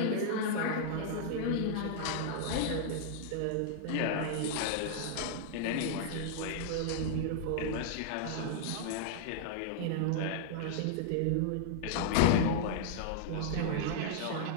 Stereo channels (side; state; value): both; different; correlation -0.01